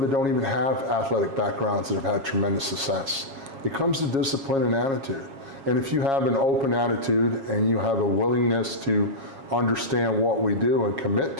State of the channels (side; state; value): left; late; 7.3 ms